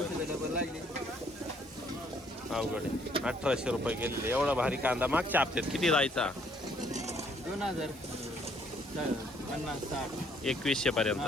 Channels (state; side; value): normal; both; correlation 0.65